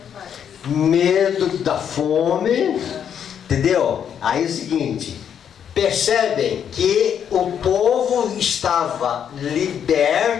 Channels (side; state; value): right; quieter; 8.5 dB